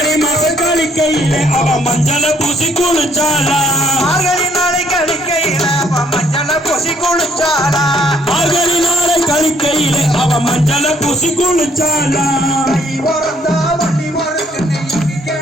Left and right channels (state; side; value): normal; both; correlation 0.66